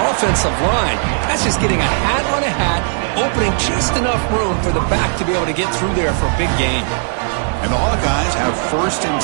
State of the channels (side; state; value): left; silent; 62 dB below the other